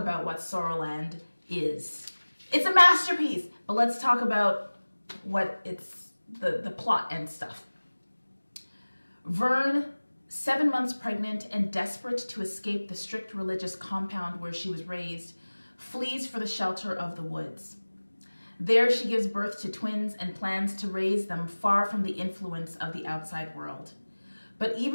what SOULar is. It's a masterpiece, but let's talk about what it's, the plot and stuff. Vern, 7 months pregnant and desperate to escape the strict religious compound where she was raised, flees for the shelter of the woods. There she gives birth to twins and plans to raise them far from the influence of the outside world. But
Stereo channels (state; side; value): inverted; both; correlation -1.00